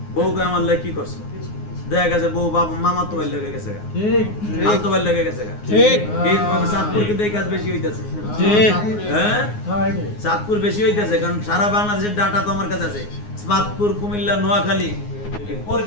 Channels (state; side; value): late; right; 9.6 ms